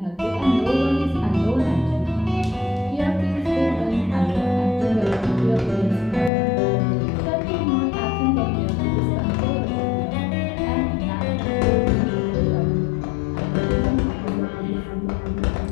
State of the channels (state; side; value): drops out; right; at 6.3 s